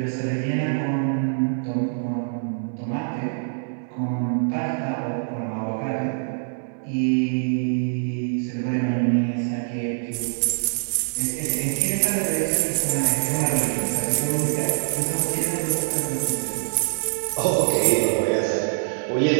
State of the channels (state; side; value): silent; left; digital silence